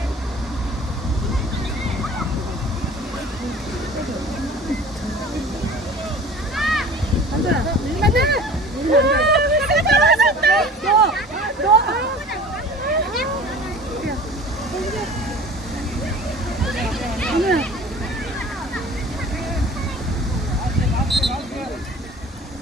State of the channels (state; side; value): normal; both; correlation 0.43